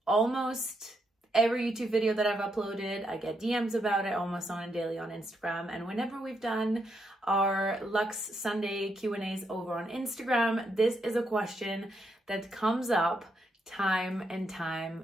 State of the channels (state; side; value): normal; both; correlation 0.79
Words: almost every YouTube video that I've uploaded. I get DMs about it almost on a daily on Instagram. And whenever we've done our Luxe Sunday Q&As over on Instagram, this is a question that comes up time and